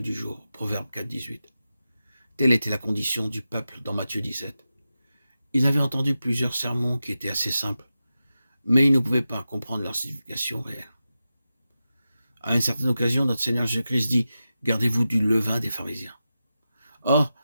jour. Proverbe 4, 18. Telle était la condition du peuple dans Matthieu 17. Ils avaient entendu plusieurs sermons qui étaient assez simples, mais ils ne pouvaient pas comprendre leur signification réelle. À une certaine occasion, notre Seigneur Jésus-Christ dit « Gardez-vous du levain des pharisiens ». Or,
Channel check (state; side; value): inverted; both; correlation -0.92